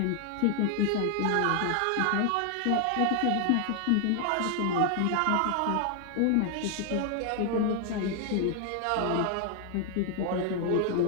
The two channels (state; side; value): different; both; correlation 0.00